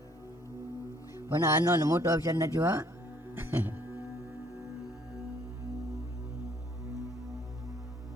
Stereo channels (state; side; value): normal; both; correlation 0.62